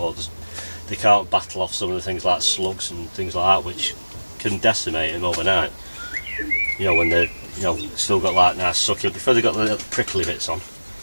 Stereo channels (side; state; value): both; inverted; correlation -1.00